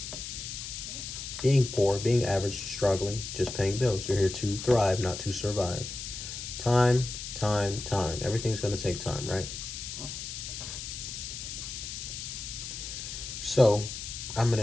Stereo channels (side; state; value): left; noise; hiss, 8 dB below the sound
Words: Being poor, being average, struggling, just paying bills. You're here to thrive, not to survive. Time. Everything's going to take time, right? So, I'm going